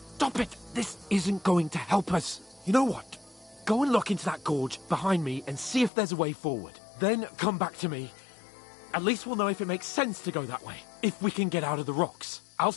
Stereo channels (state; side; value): drops out; right; at 5.9 s